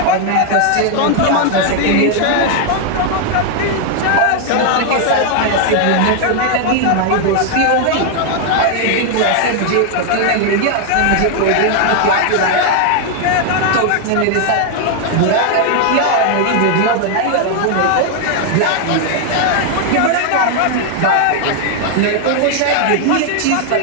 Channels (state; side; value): different; both; correlation 0.00